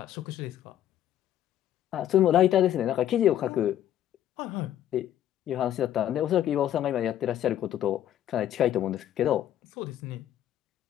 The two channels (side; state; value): right; quieter; 11.5 dB